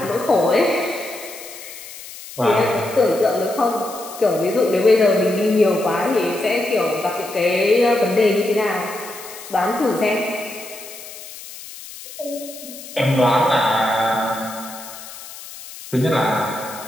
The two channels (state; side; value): noise; left; hiss, 14 dB below the sound